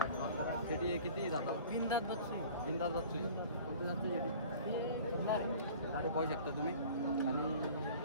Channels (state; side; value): inverted; both; correlation -0.44